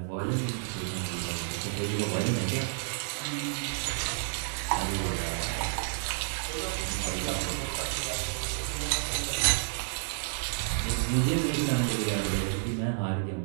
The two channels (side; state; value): left; silent; digital silence